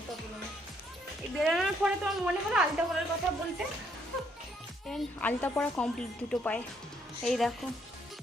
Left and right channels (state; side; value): normal; both; correlation 0.70